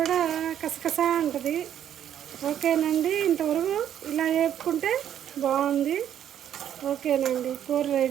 కసకసా ఉంటుంది. ఓకేనండి, ఇంతవరకు ఇలా వేపుకుంటే బాగుంది. ఓకేనండి, కూర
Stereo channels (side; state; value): left; quieter; 10.1 dB